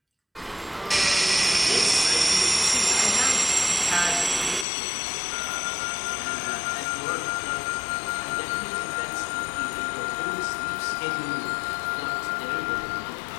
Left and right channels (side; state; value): right; drops out; at 4.7 s